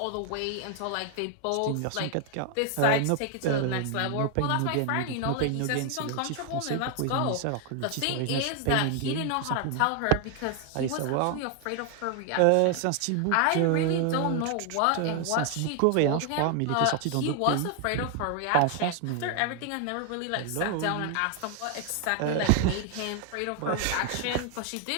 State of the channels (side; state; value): both; different; correlation 0.01